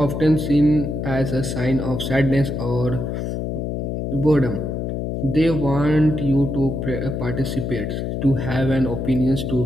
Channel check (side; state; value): left; noise; hum, 3 dB below the sound